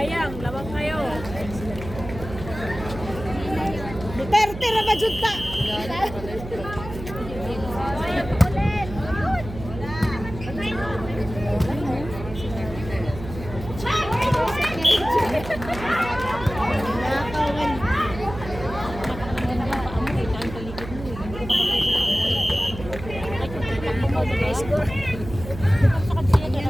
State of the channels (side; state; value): right; noise; hum, 11 dB below the sound